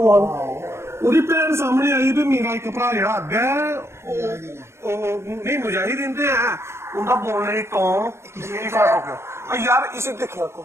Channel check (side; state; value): left; late; 0.13 ms